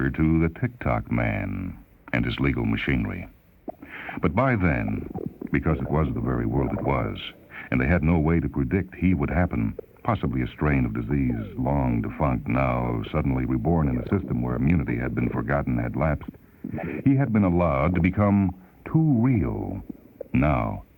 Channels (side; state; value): both; identical; correlation 1.00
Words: to the Tock man and his legal machinery. But by then, because it was the very world it was, and they had no way to predict he would happen, possibly a strain of disease long defunct, now suddenly reborn in a system where immunity had been forgotten, had lapsed, he had been allowed to become too real. Now